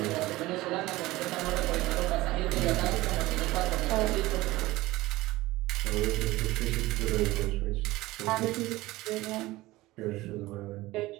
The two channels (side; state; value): left; quieter; 18.6 dB